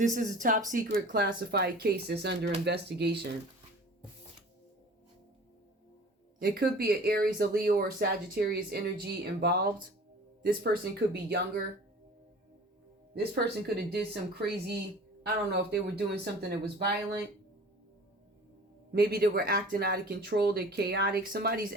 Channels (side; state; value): both; normal; correlation 0.44